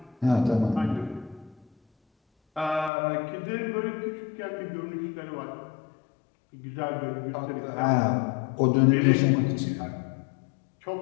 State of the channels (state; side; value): drops out; right; at 2.9 s